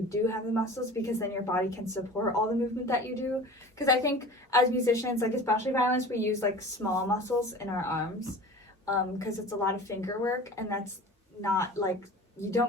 do have the muscles because then your body can support all the movement that you do. Because I think as musicians, like especially violinists, we use like small muscles in our arms because it's a lot of finger work, and that's not like, you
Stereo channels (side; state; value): both; normal; correlation 0.39